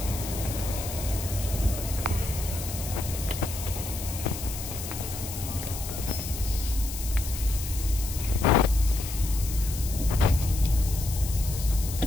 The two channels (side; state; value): left; noise; hiss, 9 dB below the sound